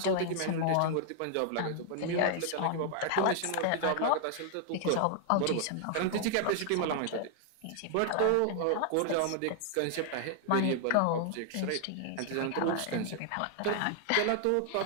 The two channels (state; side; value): different; both; correlation 0.00